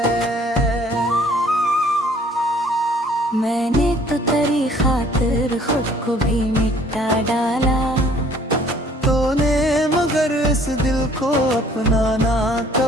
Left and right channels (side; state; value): both; normal; correlation 0.57